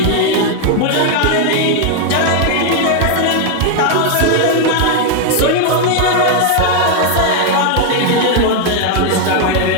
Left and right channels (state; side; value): different; both; correlation 0.00